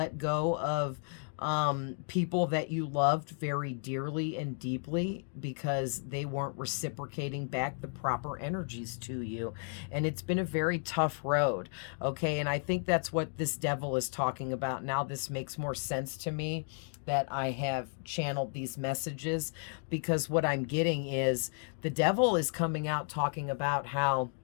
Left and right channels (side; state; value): right; silent; 56 dB below the other